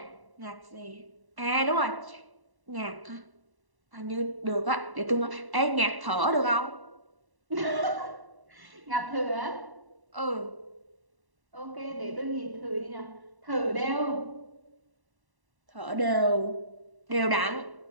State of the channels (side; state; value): left; late; 1.1 ms